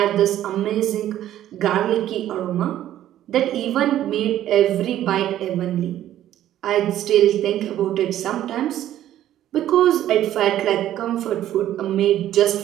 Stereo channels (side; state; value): left; quieter; 12.4 dB